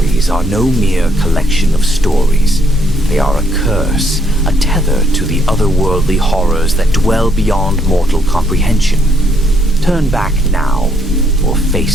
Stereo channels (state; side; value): normal; both; correlation 0.72